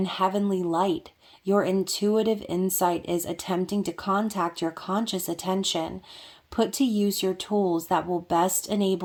heavenly light. Your intuitive insight is attempting to contact your conscious attention. Put to use your tools that will best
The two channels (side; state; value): both; identical; correlation 1.00